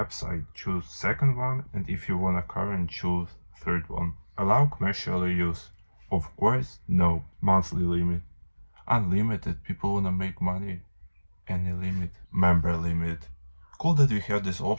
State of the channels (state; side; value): inverted; both; correlation -1.00